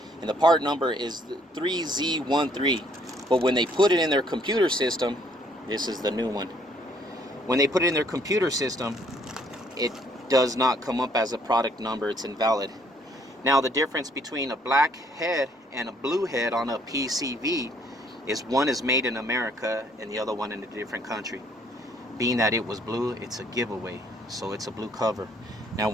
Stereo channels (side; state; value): both; normal; correlation 0.64